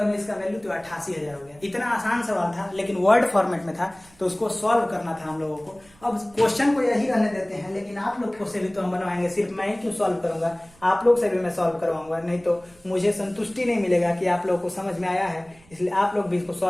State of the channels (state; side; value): noise; right; rumble, 28 dB below the sound